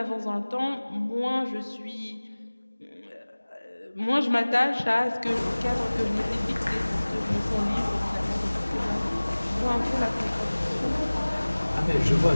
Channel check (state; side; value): inverted; both; correlation -1.00